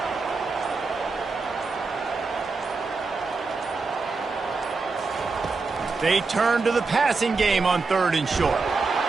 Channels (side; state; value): left; quieter; 4.2 dB